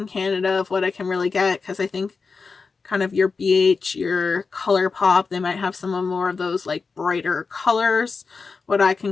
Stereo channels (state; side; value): quieter; right; 4.7 dB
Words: Canada of what I can really get, because I think kind of your BH, your ColourPop, they might have some more of those like brighter colors, what I